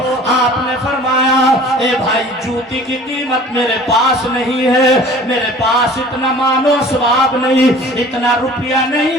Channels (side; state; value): both; normal; correlation 0.46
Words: آپ نے فرمایا اے بھائی جوتی کی قیمت میرے پاس نہیں ہے، میرے پاس اتنا مال و اسباب نہیں، اتنا روپیہ نہیں،